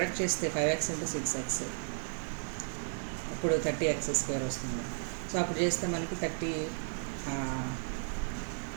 చేస్తే 5x × 6x ఇప్పుడు 30x² వస్తుంది. సో అప్పుడు చేస్తే మనకి 30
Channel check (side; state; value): left; silent; 55 dB below the other